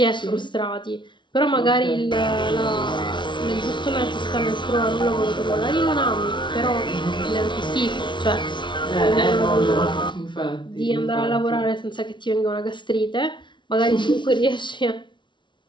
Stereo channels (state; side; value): late; right; 0.23 ms